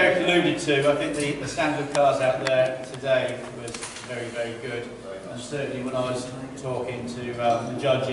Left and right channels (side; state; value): both; identical; correlation 1.00